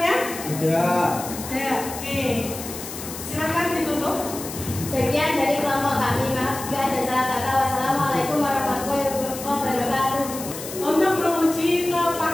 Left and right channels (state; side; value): noise; left; hiss, 10 dB below the sound